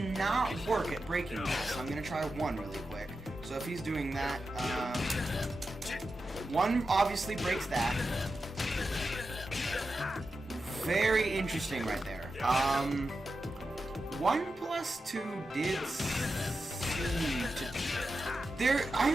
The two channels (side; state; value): both; normal; correlation 0.90